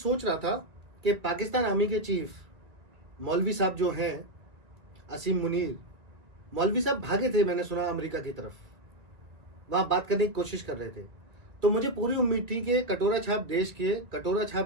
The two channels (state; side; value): late; left; 2.3 ms